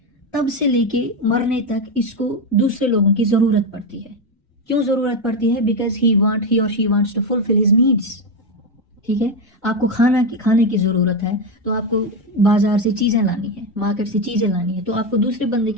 तब से लेके मरने तक इसको दूसरे लोगों की ज़रूरत पड़ती है। क्यों ज़रूरत पड़ती है? बिकॉज ही और she wants to fulfil his needs. ठीक है, आपको खाने की ज़रूरत है तो आपको बाजार से चीज़ें लानी है, मार्केट से चीज़ें लानी है, तो आपको दूसरे बंदे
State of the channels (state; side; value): normal; both; correlation 0.10